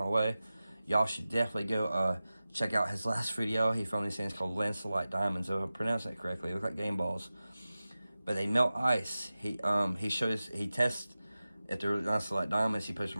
way. Y'all should definitely go check out his last video. He filmed these things called Lancelot Diamonds. If I pronounce that correctly, they look like game balls, but they melt ice. He tests if they're Lancelot Diamonds. He puts them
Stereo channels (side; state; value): both; inverted; correlation -0.95